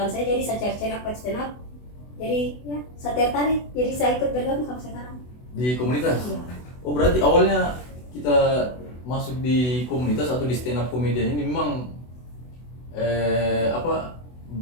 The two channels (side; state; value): right; late; 24 ms